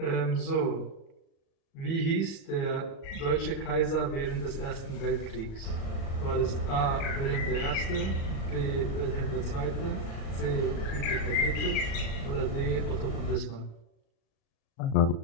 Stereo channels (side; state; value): right; late; 36 ms